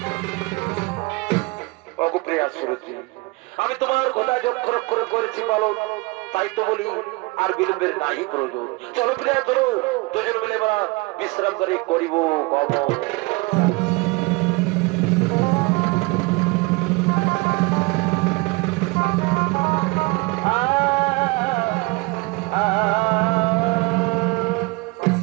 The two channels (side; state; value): left; quieter; 25.2 dB